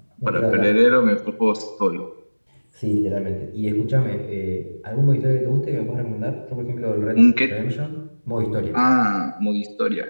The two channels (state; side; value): inverted; both; correlation -1.00